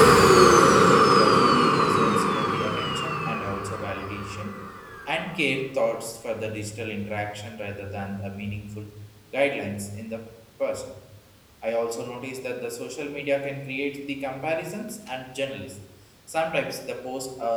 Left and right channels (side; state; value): both; identical; correlation 1.00